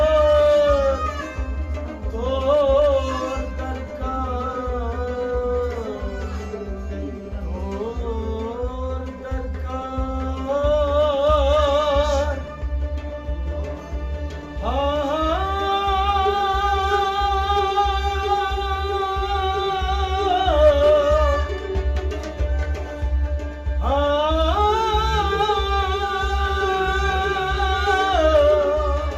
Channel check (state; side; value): identical; both; correlation 1.00